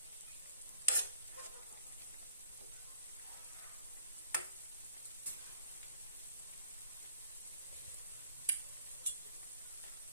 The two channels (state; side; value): inverted; both; correlation -0.53